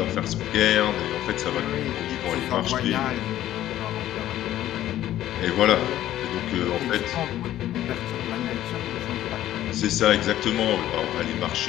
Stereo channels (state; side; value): quieter; right; 13.0 dB